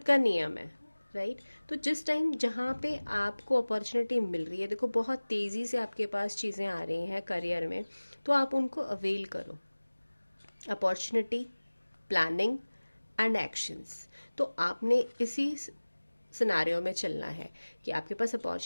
का नियम है, राइट। तो जिस टाइम जहाँ पे आपको अपॉर्चुनिटी मिल रही है, देखो बहुत तेज़ी से आपके पास चीज़ें आ रही हैं करियर में, तो आप उनको अवेल करो। Opportunity, planning, and actions. तो आपने इसी सिनारियो में चलना है कि आपके पास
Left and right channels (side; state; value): both; inverted; correlation -1.00